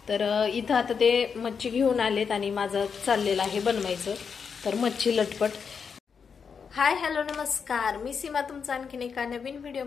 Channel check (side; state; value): right; quieter; 6.2 dB